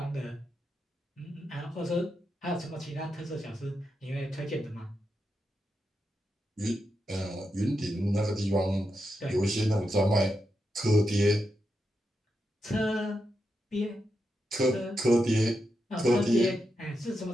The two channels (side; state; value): both; normal; correlation 0.86